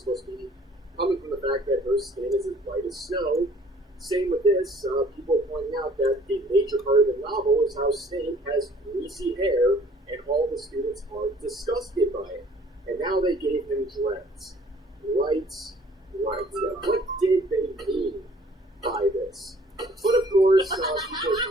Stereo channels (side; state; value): both; normal; correlation 0.56